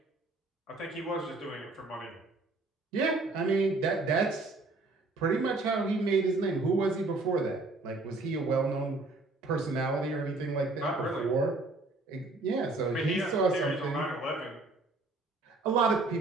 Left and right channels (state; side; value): quieter; left; 3.2 dB